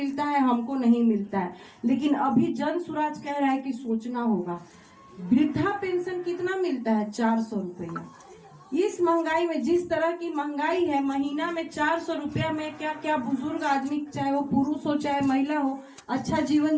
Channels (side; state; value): both; identical; correlation 1.00